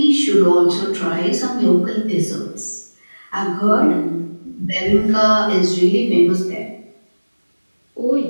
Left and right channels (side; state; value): both; inverted; correlation -1.00